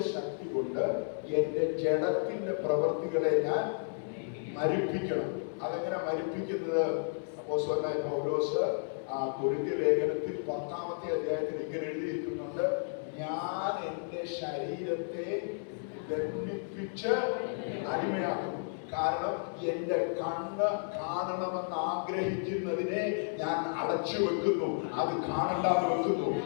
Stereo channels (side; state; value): right; silent; digital silence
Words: ശക്തി കൊണ്ട് എന്റെ ജഡത്തിന്റെ പ്രവൃത്തികളെ ഞാൻ മരിപ്പിക്കണം. അതെങ്ങനെ മരിപ്പിക്കുന്നത്? അപ്പോസ്തലനായ പൗലോസ് കൊരിന്ത്യ ലേഖനത്തിൽ 10-ാമത്തെ അധ്യായത്തിൽ ഇങ്ങനെ എഴുതിയിരിക്കുന്നുണ്ട്, ഞാൻ എൻ്റെ ശരീരത്തെ ദണ്ഡിപ്പിച്ച് അടിമയാക്കുന്നു. കാരണം എന്റെ കണ്ണ് കാണണമെന്ന് ആഗ്രഹിക്കുന്നതിനെ ഞാൻ അടച്ചു വെക്കുന്നു, അത് കാണണ്ടാന്ന് വെക്കുന്നു.